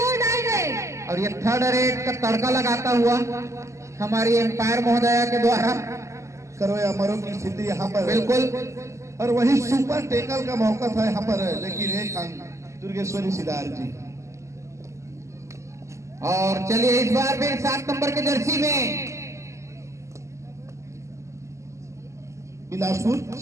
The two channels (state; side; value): late; left; 0.14 ms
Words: और ये थर्ड रेड का तड़का लगाता हुआ हमारी एम्पायर महोदया के द्वारा करो या मरो की स्थिति यहाँ पर बिल्कुल। और वही सुपर टेकल का मौका था यहाँ पर, लेकिन एक अंक दुर्गेश्वरी सिद्धार्थ जी। और चलिए इस बार भी 7 नंबर के जर्सी में बिलासपुर